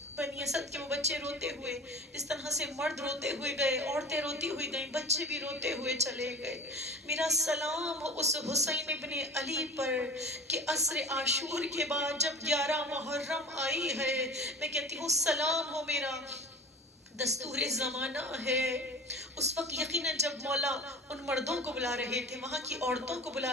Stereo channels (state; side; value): normal; both; correlation 0.38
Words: بنی اسد کے وہ بچے روتے ہوئے، اس طرح سے مرد روتے ہوئے گئے، عورتیں روتی ہوئی گئیں، بچے بھی روتے ہوئے چلے گئے۔ میرا سلام ہو اس حسین ابن علی پر کہ عصر عاشور کے بعد جب 11 محرم آئی ہے، میں کہتی ہوں سلام ہو میرا دستور زمانہ ہے۔ اس وقت یقیناً جب مولا ان مردوں کو بلا رہے تھے، وہاں کی عورتوں کو